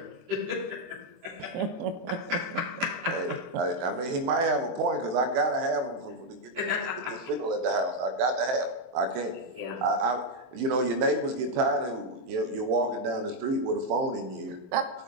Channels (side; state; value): left; late; 23 ms